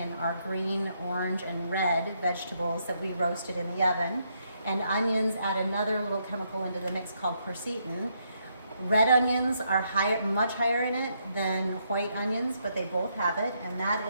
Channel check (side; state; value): both; inverted; correlation -0.76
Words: our green, orange, and red vegetables that we roasted in the oven. And onions add another little chemical into the mix called quercetin. Red onions are much higher in it than white onions, but they both have it, and that